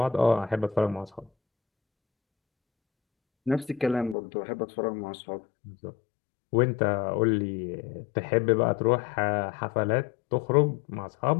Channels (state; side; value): drops out; right; at 4.2 s